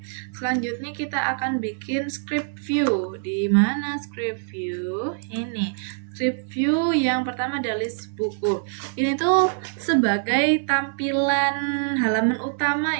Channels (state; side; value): silent; left; digital silence